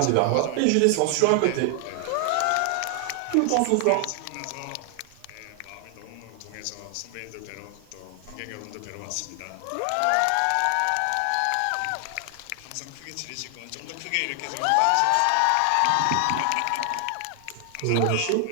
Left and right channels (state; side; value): different; both; correlation 0.00